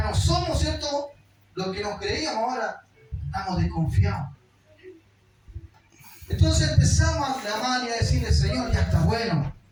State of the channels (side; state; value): both; identical; correlation 1.00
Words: no somos, ¿cierto? Lo que nos creíamos, ahora estamos desconfiados. Entonces empezamos a clamar y a decirle, Señor, ya está bueno.